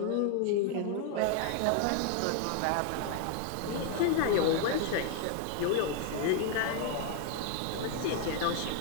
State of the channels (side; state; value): both; different; correlation 0.00